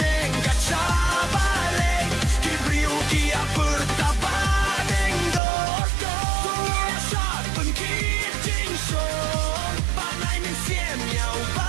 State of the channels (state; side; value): drops out; left; at 5.4 s